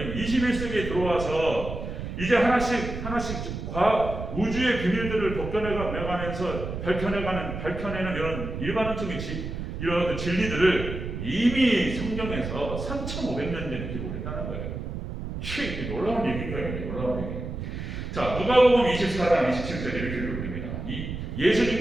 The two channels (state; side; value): noise; right; rumble, 6 dB below the sound